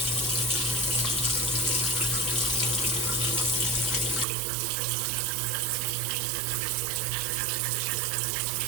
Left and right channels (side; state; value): left; drops out; at 4.2 s